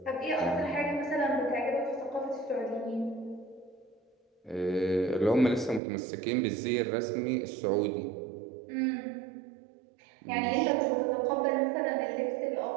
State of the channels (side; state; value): left; drops out; at 5.8 s